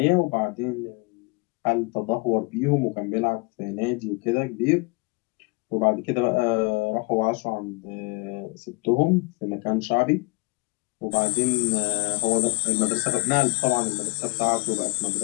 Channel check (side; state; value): right; quieter; 26.0 dB